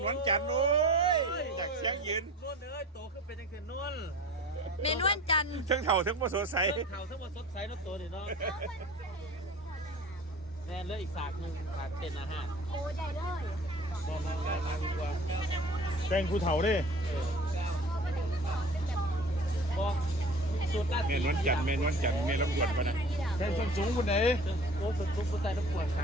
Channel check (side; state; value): both; normal; correlation 0.42